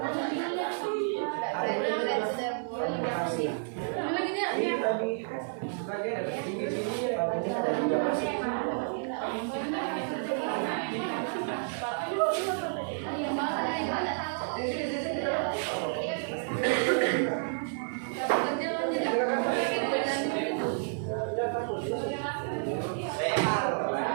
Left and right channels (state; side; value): silent; left; 57 dB below the other